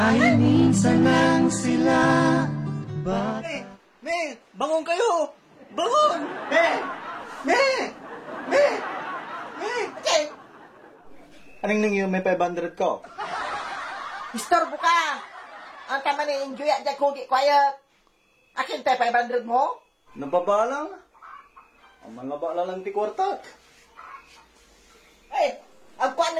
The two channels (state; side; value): identical; both; correlation 1.00